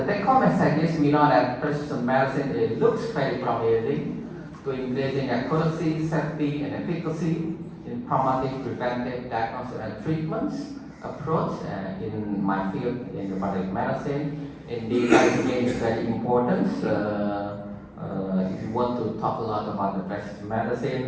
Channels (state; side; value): identical; both; correlation 1.00